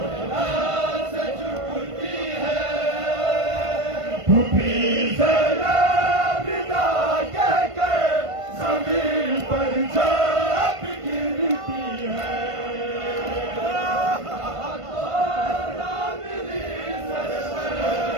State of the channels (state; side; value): late; left; 1.5 ms